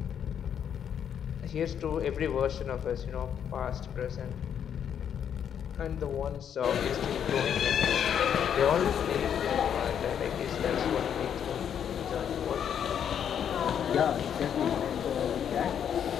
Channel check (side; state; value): right; quieter; 8.6 dB